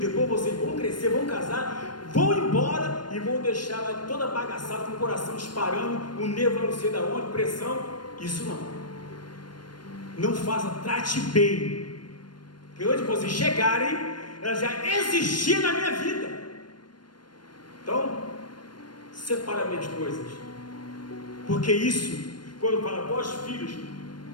vocês vão crescer, vão casar, vão embora e vão deixar lá toda bagaçada, com o coração disparando, o nervo não sei da onde, pressão. Isso não faça, trate bem, que onde vocês chegarem, ela já existia na minha vida. Então, separa minhas coisas, porque isso, quando fala, vós filhos,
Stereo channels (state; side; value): late; right; 0.71 ms